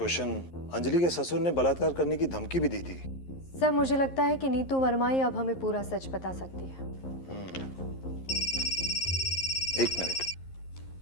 अंजलि के ससुर ने बलात्कार करने की धमकी भी दी थी। सर मुझे लगता है कि नीतू वर्मा ही अब हमें पूरा सच बता सकती है। एक मिनट।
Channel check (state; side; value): late; right; 11 ms